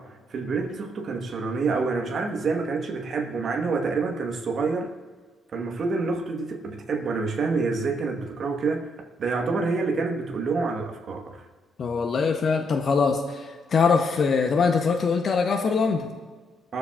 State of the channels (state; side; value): normal; both; correlation 0.74